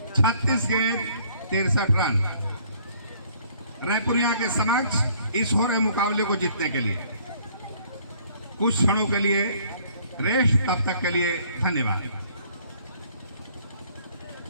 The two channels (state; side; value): inverted; both; correlation -0.61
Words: 36 गेंद 63 रन रायपुरिया के समक्ष इस हो रहे मुकाबले को जीतने के लिए। कुछ क्षणों के लिए रेस्ट, तब तक के लिए धन्यवाद।